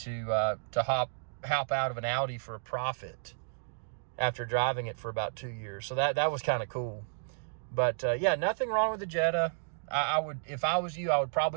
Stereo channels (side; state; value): left; silent; digital silence